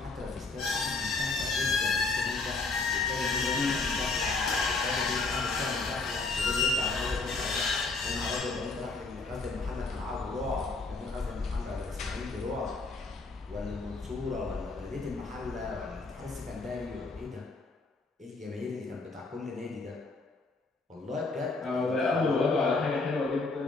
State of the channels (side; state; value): right; quieter; 3.7 dB